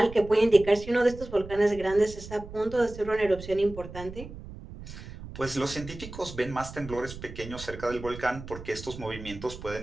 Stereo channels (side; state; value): right; noise; rumble, 13 dB below the sound